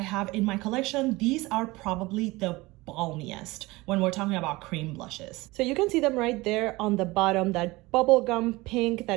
have in my collection, these are probably the balmiest when we're talking about cream blushes. So you can see them right there on the bottom. That bubblegum pink that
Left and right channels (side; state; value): left; quieter; 21.4 dB